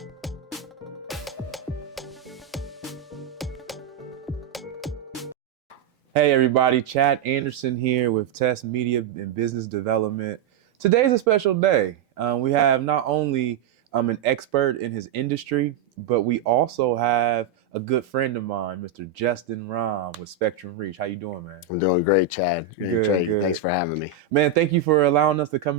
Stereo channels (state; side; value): quieter; left; 7.2 dB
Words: Hey everybody, Chad Anderson here with Test Media and Business Development. Today's a special day. We have not only an expert in his industry, but we also have a good friend of mine, Mr. Justin Rohm with Spectrum Reach. How you doing, man? I'm doing great, Chad. Good. Thanks for having me. Man, thank you for allowing us to come